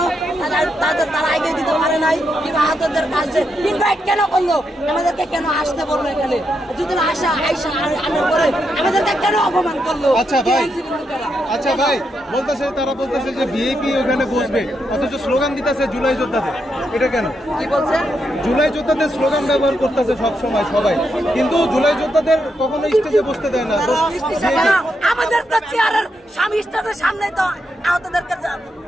তারা এগিয়ে দিতে পারে নাই কিংবা আহতদের কাছে ইনভাইট কেন করলো, আমাদেরকে কেন আসতে বললো এখানে, যদি আইসা আনার পরে আমাদেরকে কেন অপমান করলো? আচ্ছা ভাই বলতেছে, তারা বলতেছে যে ভিআইপি ওখানে বসবে, অথচ স্লোগান দিতেছে জুলাই যোদ্ধাদের, এটা কেন? কি বলছে? জুলাই যোদ্ধাদের স্লোগান ব্যবহার করতেছে সবসময় সবাই, কিন্তু জুলাই যোদ্ধাদের কখনো স্টেজে বসতে দেয় না। আমাদের তো চেয়ারের স্বামী স্টেজের সামনে তো আহতদেরকে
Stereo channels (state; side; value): normal; both; correlation 0.82